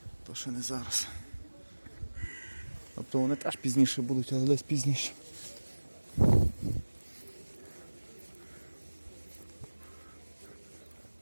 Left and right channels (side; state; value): both; inverted; correlation -1.00